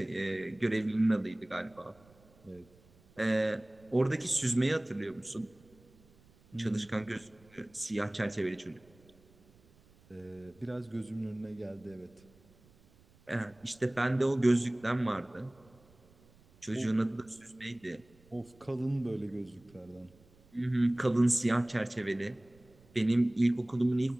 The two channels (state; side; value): noise; right; rumble, 28 dB below the sound